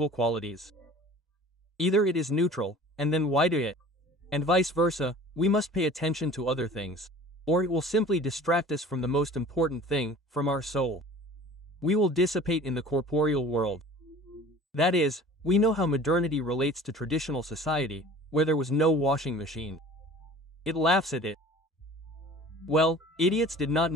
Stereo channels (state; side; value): normal; both; correlation 0.44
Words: qualities? Either it is neutral, and then why do it? And vice versa, we must pay attention to other things. Or it will simply distract us from the most important thing, from our soul. We will dissipate in the corporeal world. That is, we know how modernity relates to traditional society, where there was no washing machine. It laughs at it. Well, idiots did not